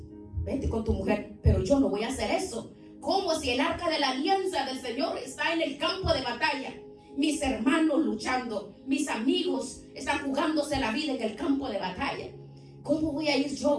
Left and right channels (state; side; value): identical; both; correlation 1.00